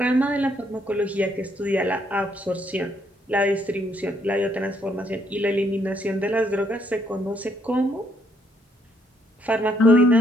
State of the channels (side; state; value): both; normal; correlation 0.71